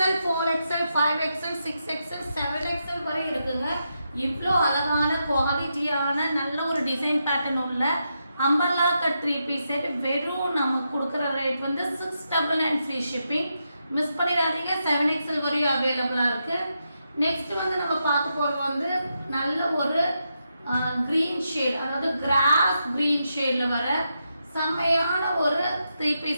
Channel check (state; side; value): inverted; both; correlation -0.84